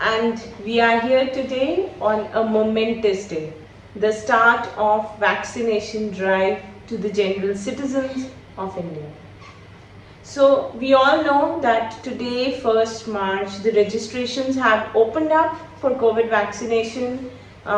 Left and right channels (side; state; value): both; identical; correlation 1.00